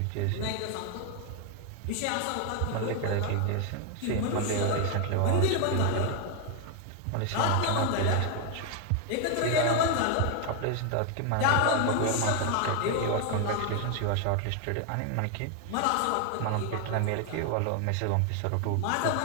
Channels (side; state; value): both; different; correlation 0.01